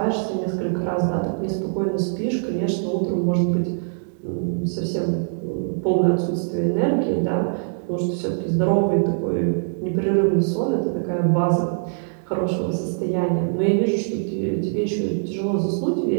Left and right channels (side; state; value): left; silent; digital silence